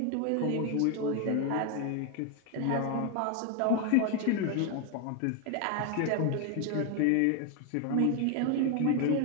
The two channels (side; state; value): both; different; correlation 0.01